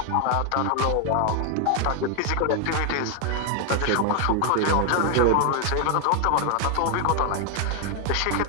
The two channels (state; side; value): different; both; correlation 0.00